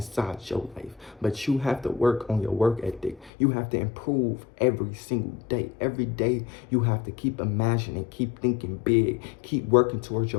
your life. But you have to work on your work ethic. You have to improve every single day. Every day you have to keep imagining, keep thinking big, keep working towards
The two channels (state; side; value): drops out; right; at 3.3 s